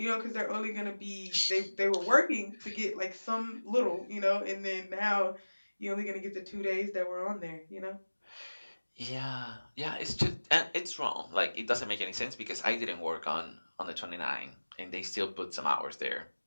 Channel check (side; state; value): both; inverted; correlation -1.00